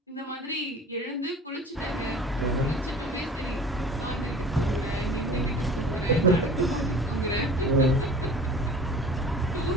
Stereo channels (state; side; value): normal; both; correlation 0.43